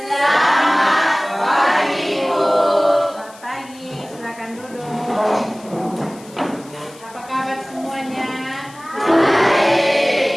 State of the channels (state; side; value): noise; left; hiss, 23 dB below the sound